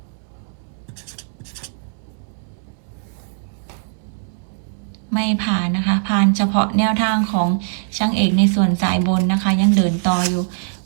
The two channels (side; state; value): left; silent; 65 dB below the other